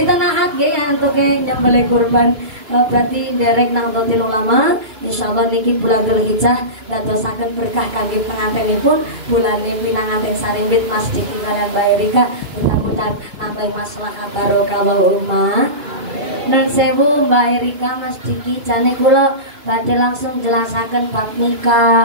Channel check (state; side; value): late; left; 2.5 ms